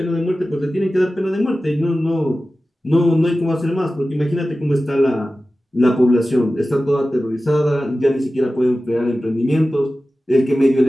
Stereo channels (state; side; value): normal; both; correlation 0.95